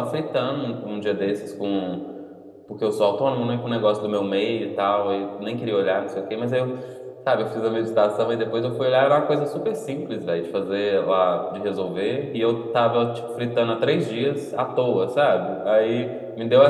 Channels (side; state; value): both; identical; correlation 1.00